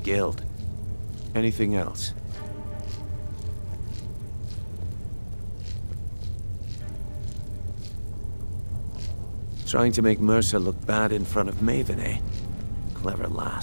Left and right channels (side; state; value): both; inverted; correlation -1.00